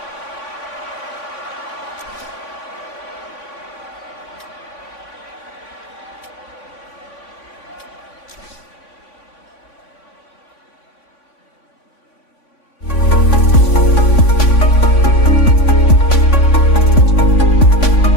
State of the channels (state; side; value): late; right; 3.5 ms